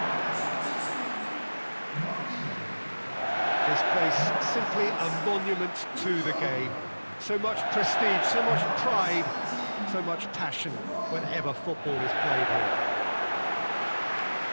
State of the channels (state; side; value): inverted; both; correlation -1.00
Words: This place simply a monument to the game. So much prestige, so much pride, so much passion whenever football is played here.